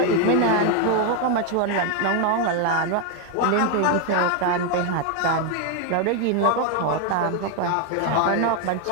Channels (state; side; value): different; both; correlation 0.01